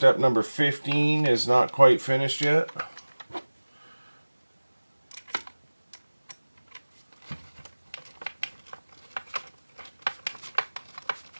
number 15 is not quite finished yet.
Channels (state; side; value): inverted; both; correlation -1.00